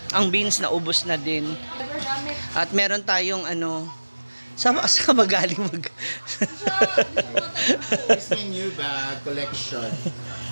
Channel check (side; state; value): both; inverted; correlation -1.00